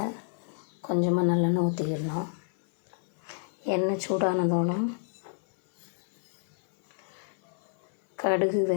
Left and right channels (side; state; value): right; silent; 56 dB below the other